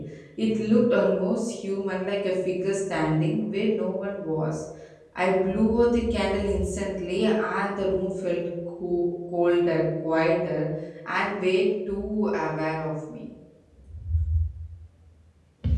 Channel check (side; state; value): both; identical; correlation 1.00